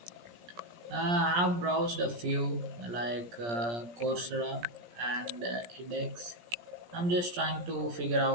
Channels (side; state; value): left; late; 17 ms